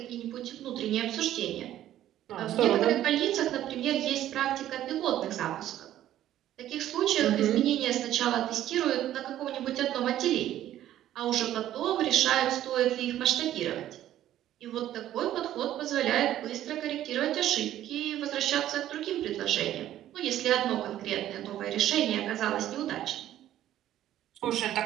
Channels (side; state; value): left; quieter; 12.6 dB